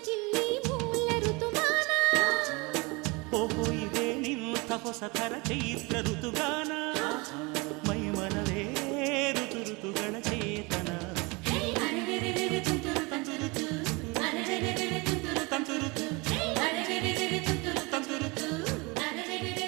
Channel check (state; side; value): quieter; left; 27.0 dB